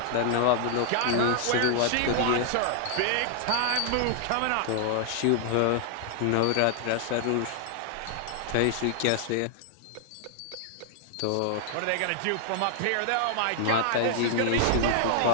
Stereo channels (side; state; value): both; different; correlation -0.01